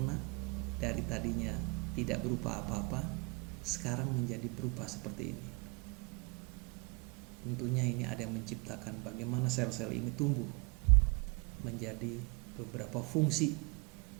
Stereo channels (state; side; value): quieter; left; 31.0 dB